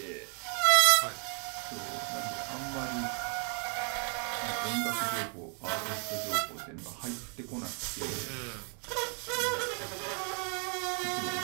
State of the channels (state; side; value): quieter; left; 38.2 dB